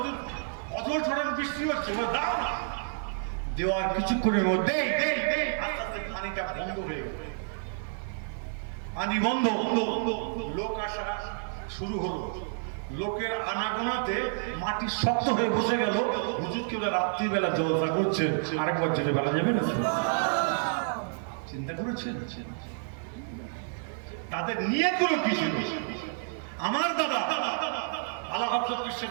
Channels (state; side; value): silent; left; 58 dB below the other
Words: অজর ছড়ানো বৃষ্টি হচ্ছে, বলে দাও না। দেওয়ার কিছুক্ষণের মধ্যে আস্তে আস্তে পানিটা বন্ধ হয়ে গেল, পানি বন্ধ, লোক আসা শুরু হলো। লোকের আনাগোনাতে মাটি শক্ত হয়ে বসে গেল। হুজুর কেবল রাত্রিবেলা জলসা করছেন, আরেকবার যেতে বেলা যাবে না। চিন্তা করেছেন তাদের নিয়তগুলো কি ছিল? আমার দাদা আলা হযরত